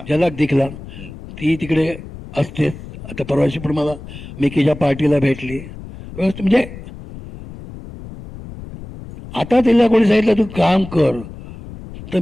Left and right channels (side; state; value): left; noise; rumble, 14 dB below the sound